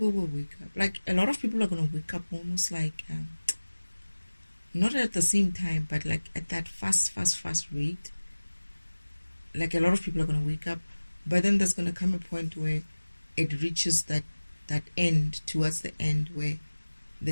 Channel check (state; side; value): inverted; both; correlation -1.00